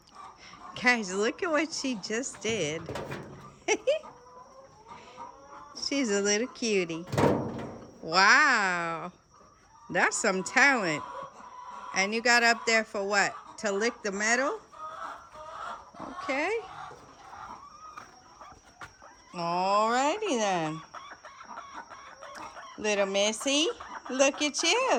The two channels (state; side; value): identical; both; correlation 1.00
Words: Guys, look at what she just did. She's a little cutie. Wow. That's some talent. And you got up there for what? To lick the metal? Okay. Alrighty then. Little Missy, look at